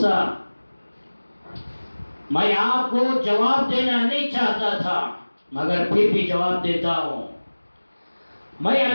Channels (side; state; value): both; inverted; correlation -1.00